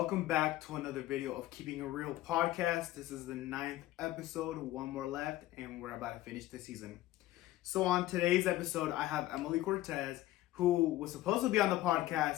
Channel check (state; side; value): quieter; right; 15.5 dB